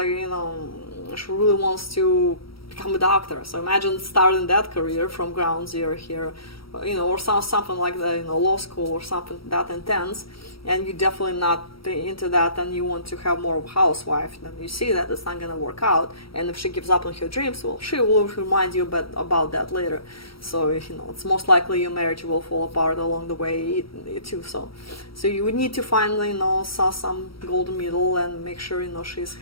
you know, she really wants to become a doctor. So imagine starting that career from ground zero here, you know, or something like that, you know, law school or something that intense, and you're definitely not into that, and you want to have more of a housewife, then you see that it's not going to work out. And if she gives up on her dreams, well, she will remind you about that later. So, you know, it's most likely your marriage will fall apart along the way too. So you would need to find, you know, some golden middle and make sure, you know, she's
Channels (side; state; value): right; late; 0.75 ms